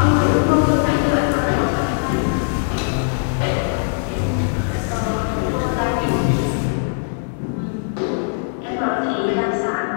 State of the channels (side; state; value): right; silent; digital silence